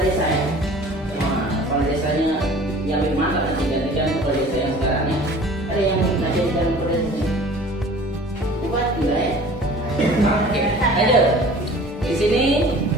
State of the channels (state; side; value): normal; both; correlation 0.46